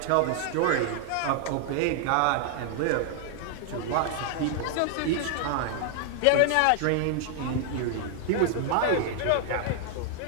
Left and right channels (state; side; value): different; both; correlation 0.00